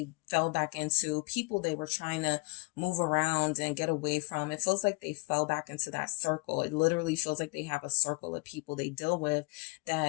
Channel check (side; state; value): right; quieter; 28.4 dB